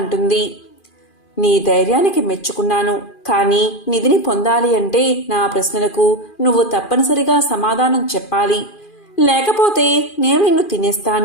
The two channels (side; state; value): right; late; 2.4 ms